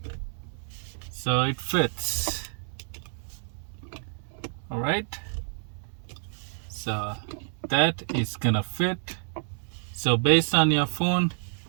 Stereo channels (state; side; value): silent; left; digital silence